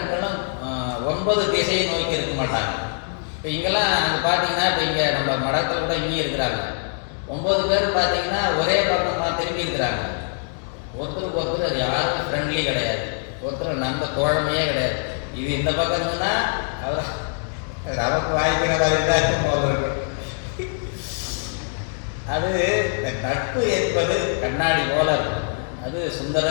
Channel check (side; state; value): right; silent; 63 dB below the other